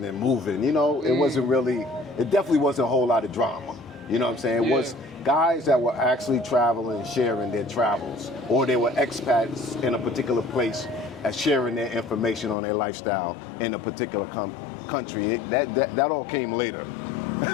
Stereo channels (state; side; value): drops out; right; at 12.6 s